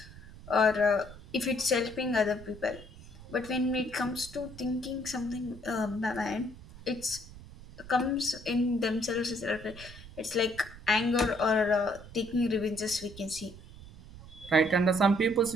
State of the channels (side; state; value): right; noise; rumble, 17 dB below the sound